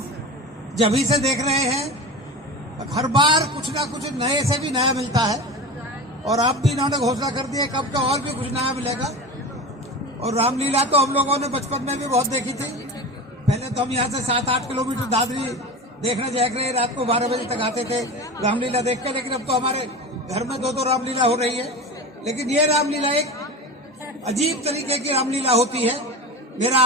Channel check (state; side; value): normal; both; correlation 0.29